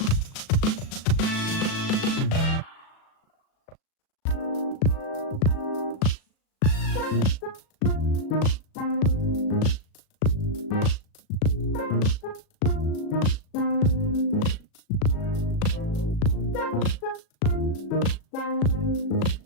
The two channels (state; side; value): late; right; 37 ms